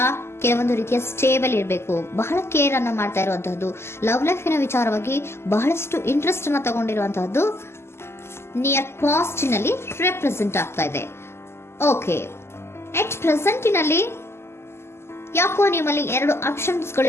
ಕೆಲವೊಂದು ರೀತಿಯ ಸ್ಟೇಬಲ್ ಇರಬೇಕು, ಬಹಳ ಕೇರ್ ಅನ್ನ ಮಾಡ್ತಾ ಇರುವಂತಹದ್ದು, ಲವ್ ಲೈಫಿನ ವಿಚಾರವಾಗಿ ಬಹಳಷ್ಟು ಇಂಟ್ರೆಸ್ಟ್ ಅನ್ನ ತಗೊಂಡಿರುವಂತಹದ್ದು ನಿಯರ್ ಪಾಸ್ಟಿನಲ್ಲಿ ರೆಪ್ರೆಸೆಂಟ್ ಆಗ್ತಾ ಇದೆ. ಓಕೆ, ಎಟ್ ಪ್ರೆಸೆಂಟಿನಲ್ಲಿ ಯಾಕೋ ನಿಮ್ಮಲ್ಲಿ 2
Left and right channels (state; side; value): late; right; 0.12 ms